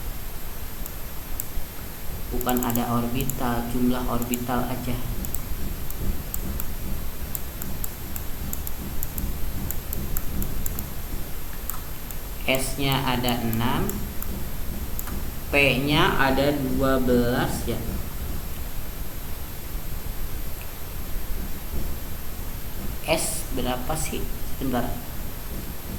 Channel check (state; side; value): identical; both; correlation 1.00